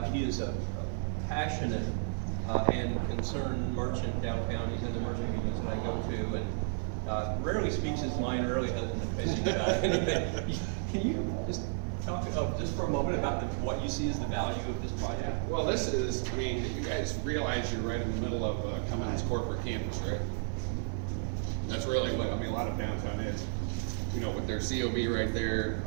he is a passionate and concerned merchant downtown. He's in the merchant meetings that I go to, and rarely speaks his mind, rarely hasn't been fishing about anything. Can you just talk just for a moment about what you see as the value of this project? Well, this is, you guys realize you're right in the middle of Cummins corporate campus, right? That's really what, a lot of downtown is. With their COB right there,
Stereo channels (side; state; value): left; silent; 56 dB below the other